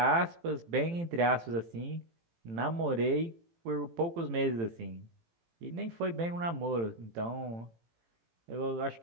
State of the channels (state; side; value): late; left; 18 ms